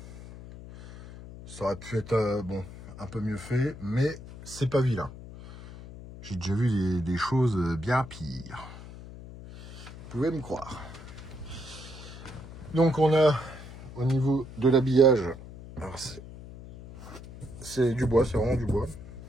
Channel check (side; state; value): left; noise; hum, 14 dB below the sound